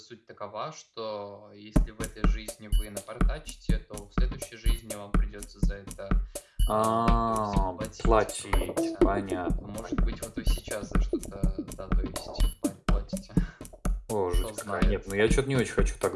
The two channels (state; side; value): identical; both; correlation 1.00